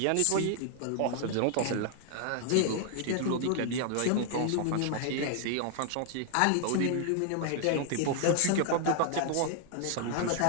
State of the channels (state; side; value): different; both; correlation 0.00